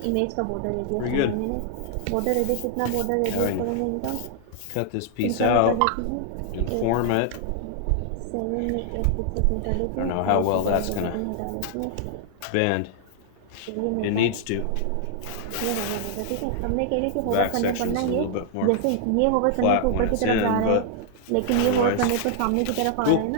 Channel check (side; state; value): both; different; correlation 0.00